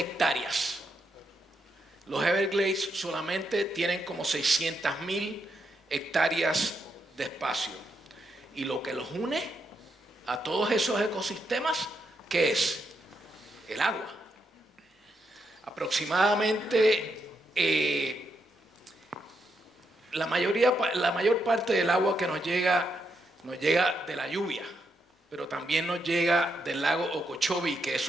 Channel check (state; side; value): normal; both; correlation 0.81